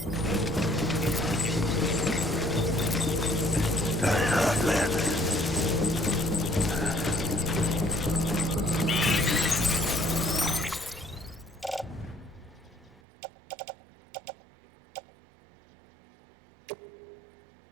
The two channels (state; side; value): drops out; left; at 13.0 s